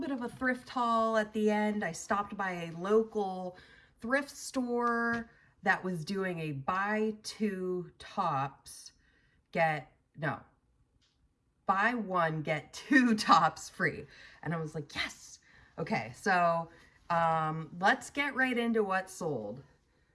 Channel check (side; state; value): both; identical; correlation 1.00